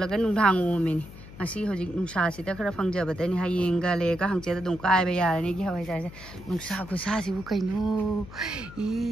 nungthang omini ngasi hojik nungsa sida khara phangjabadani hayeng ga le ga hangche da dum kai ba yarani gi hawai jar se nungsa khusa si bu kaino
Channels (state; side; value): noise; left; hum, 16 dB below the sound